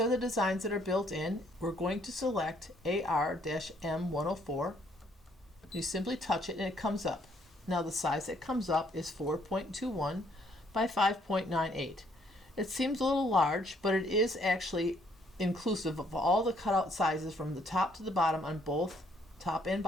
are the designs that are built in. We're going to select AR-M104. You simply touch it and it comes up. Now the size that comes up is 4.21 by 5.98. It seems a little large, but it is actually inclusive of all the cutout sizes from the top to the bottom on both top and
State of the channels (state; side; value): normal; both; correlation 0.67